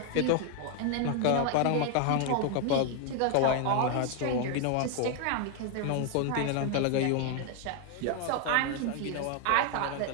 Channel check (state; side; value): different; both; correlation 0.00